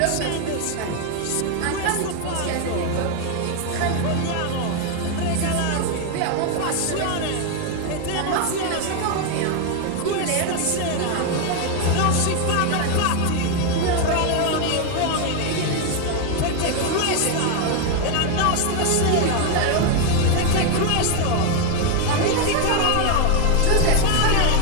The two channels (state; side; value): different; both; correlation 0.01